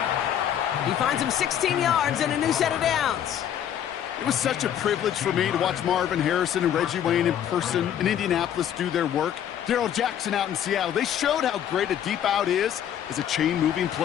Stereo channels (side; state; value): right; quieter; 9.9 dB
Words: He finds him 16 yards and a new set of downs. It was such a privilege for me to watch Marvin Harrison and Reggie Wayne in person in Indianapolis do their work. Darrell Jackson out in Seattle. They showed how great a deep out is as a chain-moving